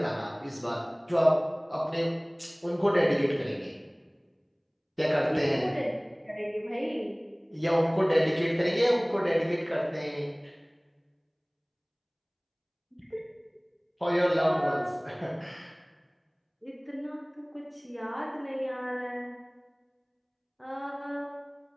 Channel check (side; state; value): both; identical; correlation 1.00